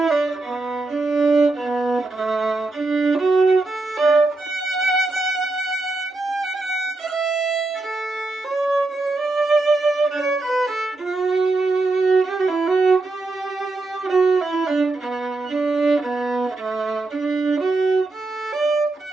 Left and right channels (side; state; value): left; quieter; 3.2 dB